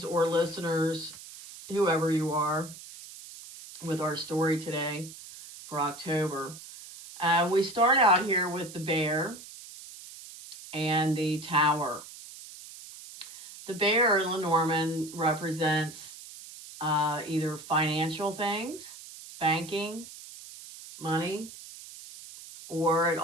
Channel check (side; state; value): right; noise; hiss, 15 dB below the sound